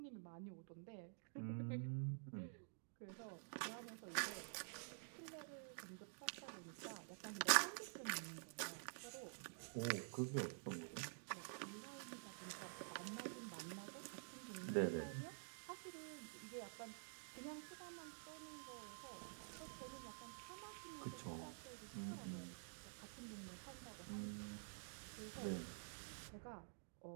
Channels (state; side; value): silent; left; digital silence